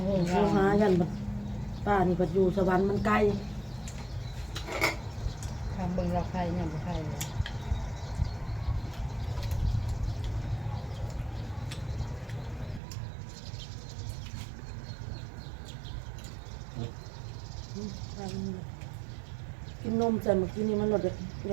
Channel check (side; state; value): left; drops out; at 12.8 s